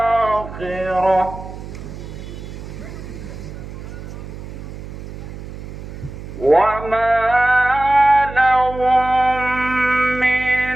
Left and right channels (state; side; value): noise; right; hum, 11 dB below the sound